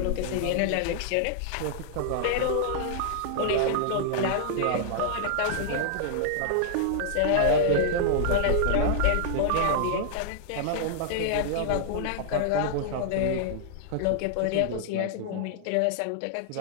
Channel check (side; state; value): both; different; correlation -0.01